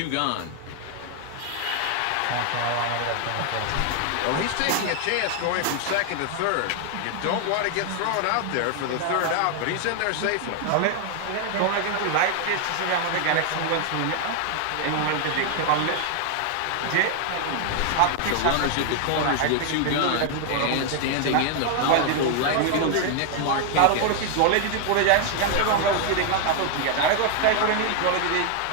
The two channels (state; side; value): different; both; correlation 0.00